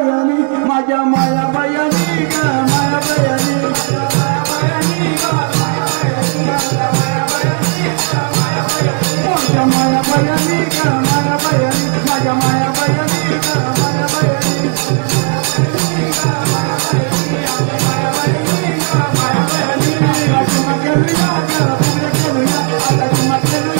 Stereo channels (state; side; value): quieter; left; 39.2 dB